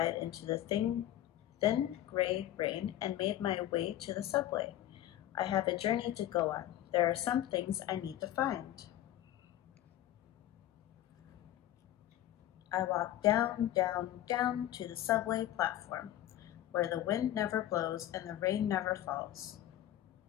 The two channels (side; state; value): right; quieter; 13.1 dB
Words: into the thin gray rain and made my way to the subway. I have a journey to go on. There are some things I need to find. I walked down, down, down to the subway platform, where the wind never blows and the rain never falls.